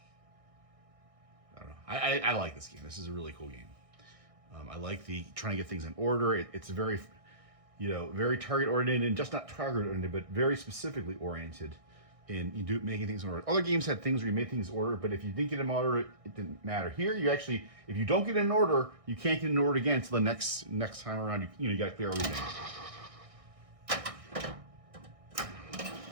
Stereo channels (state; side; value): late; left; 1.6 ms